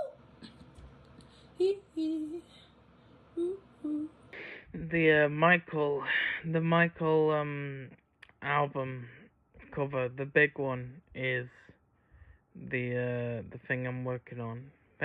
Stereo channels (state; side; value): identical; both; correlation 1.00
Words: Hee hee. Ooh, ooh. The Michael album cover, the big one, is the thing I'm working on.